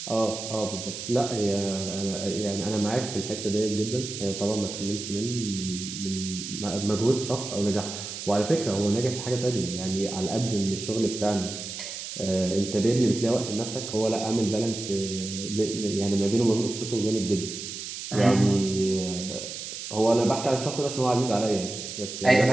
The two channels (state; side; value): noise; right; hiss, 8 dB below the sound